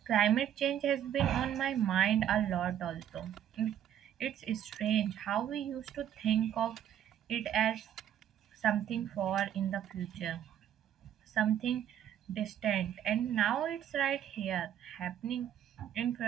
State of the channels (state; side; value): quieter; left; 10.2 dB